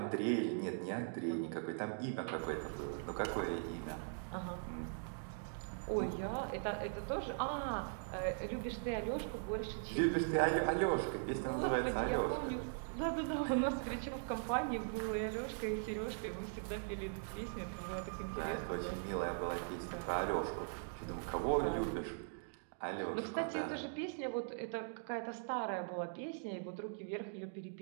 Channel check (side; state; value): left; silent; digital silence